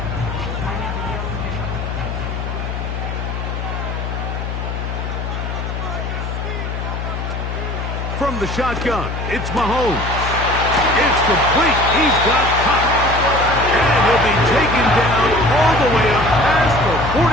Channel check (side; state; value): left; noise; hum, 4 dB below the sound